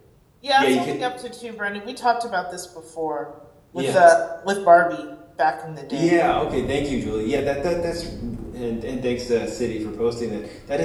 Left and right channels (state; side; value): identical; both; correlation 1.00